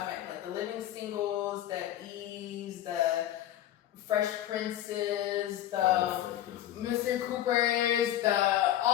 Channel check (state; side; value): quieter; right; 12.6 dB